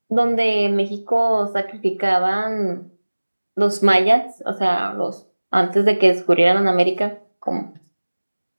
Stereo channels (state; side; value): inverted; both; correlation -1.00